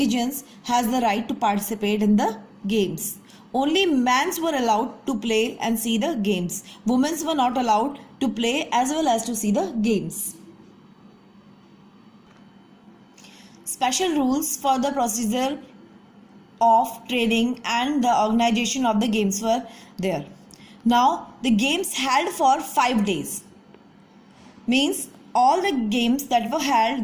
has the right to participate in the games. Only men were allowed to play and see the games. Women were not allowed to play as well as to see the games. Special rules for the procedure of training and the organization of the games were there. Now the games held for 5 days, means all the games that were held,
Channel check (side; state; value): both; identical; correlation 1.00